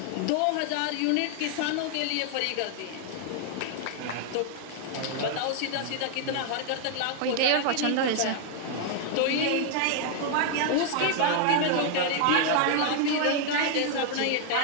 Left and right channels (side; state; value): both; different; correlation 0.00